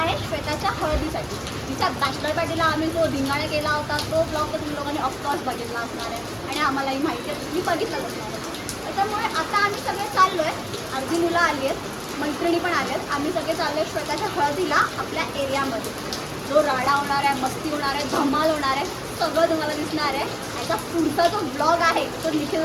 आहे श्वेताच्या हळदीसाठी. तिच्या बॅचलर पार्टीला आम्ही जो धिंगाणा केला होता तो ब्लॉग तर तुम्ही लोकांनी ऑफकोर्स बघितला असणार आहे आणि आम्हालाही माहिती आहे, तुम्ही बघितलाच असणार आहे. त्याच्यामुळे आता आम्ही सगळे चाललो आहे. अर्धी मुलं आली आहेत, मैत्रिणी पण आल्या आहेत. आम्ही सगळे चाललो आहे श्वेताच्या हळदीला आपल्या एरियामध्ये. जो राडा होणार आहे, मस्ती होणार आहे, धमाल होणार आहे, सगळं तुम्हाला दिसणार आहे. याचा पुढचा जो ब्लॉग आहे तो निखिल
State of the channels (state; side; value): identical; both; correlation 1.00